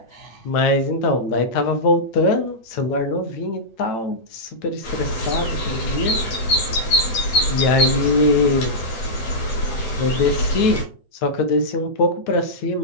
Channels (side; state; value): right; late; 9.2 ms